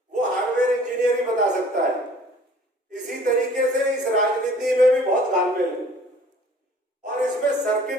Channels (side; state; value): both; normal; correlation 0.52